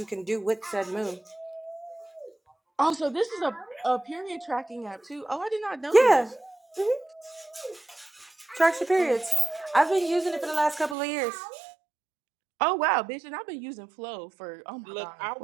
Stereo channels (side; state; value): left; drops out; at 11.0 s